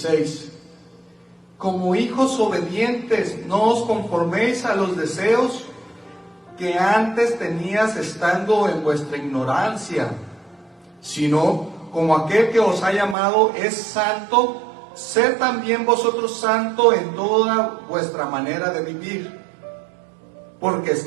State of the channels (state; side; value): drops out; left; at 13.2 s